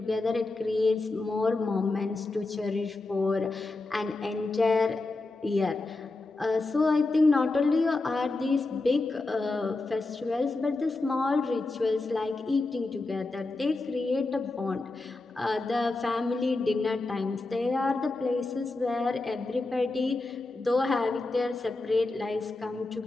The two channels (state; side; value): quieter; right; 3.2 dB